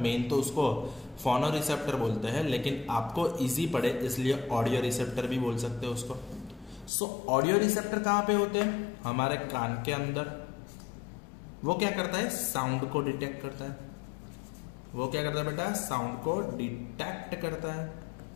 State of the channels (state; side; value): drops out; right; at 6.9 s